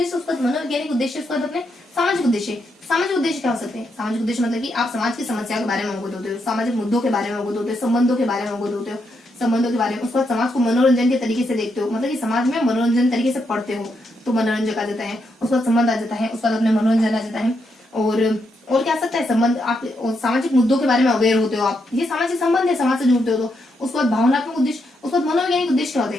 उसका मनोवैज्ञानिक उद्देश्य, उसका अपने सामाजिक उद्देश्य। सामाजिक उद्देश्य क्या हो सकते हैं, सामाजिक उद्देश्य मतलब कि आप समाज की समस्याओं के बारे में अवगत होते हो, सामाजिक मुद्दों के बारे में अवगत होते हो, संबंधों के बारे में अवगत होते हो, संबंधों के बारे में। उसके बाद समाज को मनोरंजन के तरीके से देखते हो, मतलब कि समाज में मनोरंजन तरीके से पढ़ते हो तो मनोरंजन आ जाता है। उसके बाद संबंध आ जाता है, उसके बाद अपने मनोरंजन आ जाता है। और क्या आ सकता है संबंध, आप सामाजिक मुद्दों के बारे में अवेयर होते हो, आप ये सामाजिक संबंध है, समाज से जुड़ते हो तो। उसके बाद भावनात्मक उद्देश्य, उसके बाद मनोवैज्ञानिक उद्देश्य क्या होते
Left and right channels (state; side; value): normal; both; correlation 0.80